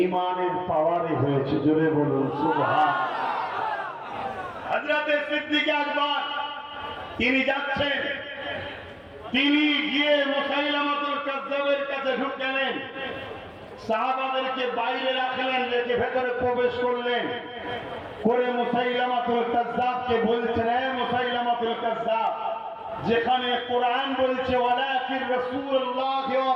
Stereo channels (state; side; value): identical; both; correlation 1.00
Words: ঈমানের পাওয়ারে হয়েছে। জোরে বলুন সুবহান। হযরতে সিদ্দিক আকবর তিনি যাচ্ছেন, তিনি গিয়ে মুসাইলামাতুল কাজ্জাবের কাছে ঢুকলেন, সাহাবাদেরকে বাইরে রাখলেন, রেখে ভেতরে প্রবেশ করলেন করে মুসাইলামাতুল কাজ্জাবকে বলছেন, হে মুসাইলামাতুল কাজ্জাব, যেখানে কোরআন বলছে ওয়ালাকির রাসূলুল্লাহ ওয়া